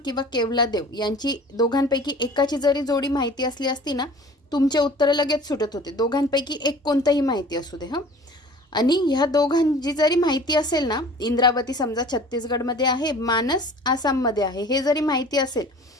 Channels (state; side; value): normal; both; correlation 0.45